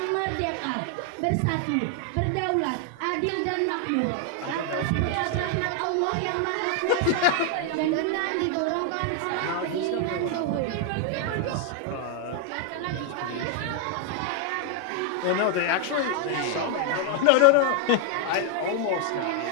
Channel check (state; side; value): different; both; correlation 0.00